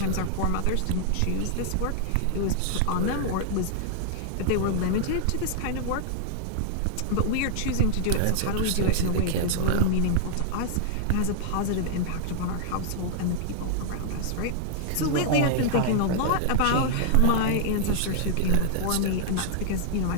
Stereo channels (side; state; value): both; different; correlation -0.01